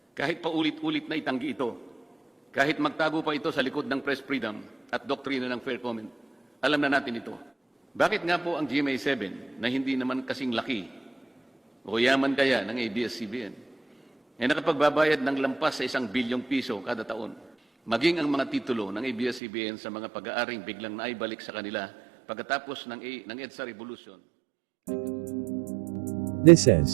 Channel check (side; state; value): left; drops out; at 19.4 s